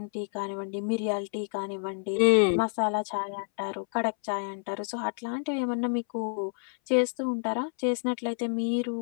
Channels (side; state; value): right; silent; 59 dB below the other